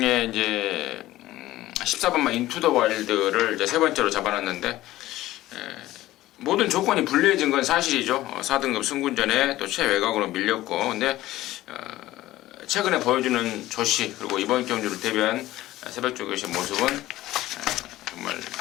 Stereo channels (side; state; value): right; quieter; 15.9 dB